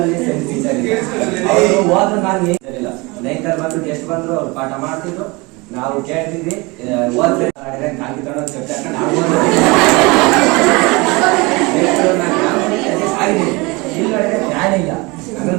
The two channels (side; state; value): left; quieter; 25.4 dB